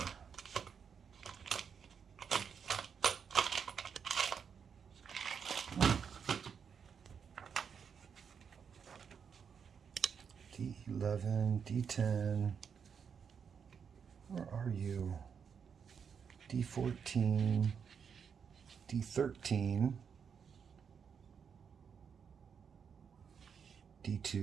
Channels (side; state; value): left; quieter; 6.8 dB